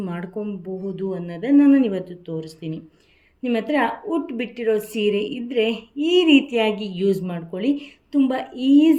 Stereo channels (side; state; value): both; identical; correlation 1.00